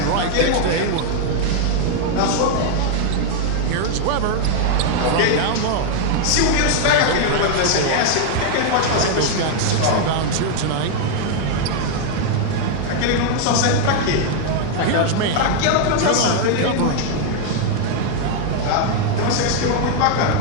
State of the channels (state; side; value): different; both; correlation 0.00